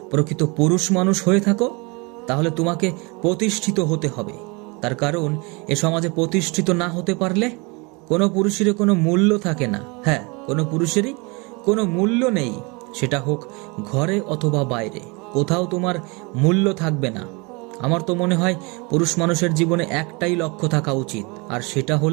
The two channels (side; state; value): left; quieter; 28.5 dB